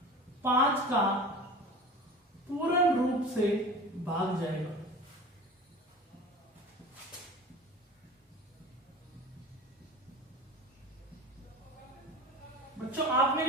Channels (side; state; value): both; normal; correlation 0.36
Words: 5 का पूर्ण रूप से भाग जाएगा। बच्चों आप